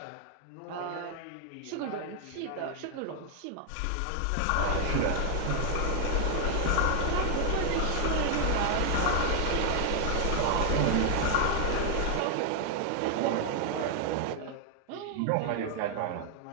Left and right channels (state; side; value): different; both; correlation 0.00